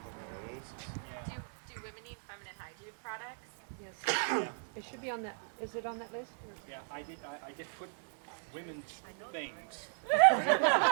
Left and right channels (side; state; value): left; silent; digital silence